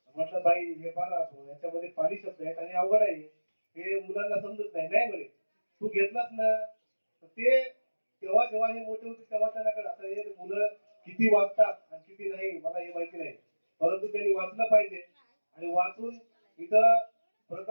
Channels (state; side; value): inverted; both; correlation -1.00